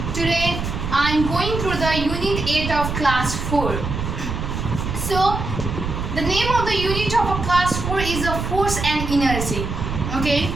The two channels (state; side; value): noise; right; rumble, 4 dB below the sound